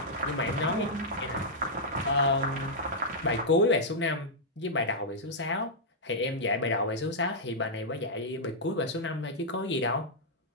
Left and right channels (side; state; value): both; normal; correlation -0.08